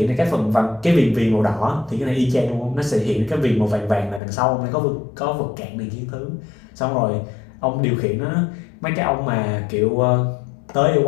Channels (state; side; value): drops out; right; at 4.2 s